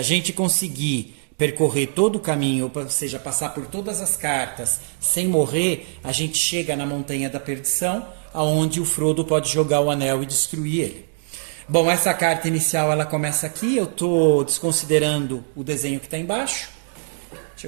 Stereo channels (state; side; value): silent; left; digital silence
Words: a gente conseguir percorrer todo o caminho, ou seja, passar por todas as cartas sem morrer, a gente chega na Montanha da Perdição, aonde o Frodo pode jogar o anel e destruir ele. Bom, essa carta inicial ela começa aqui. Eu estou desconsiderando o desenho que está embaixo. Deixa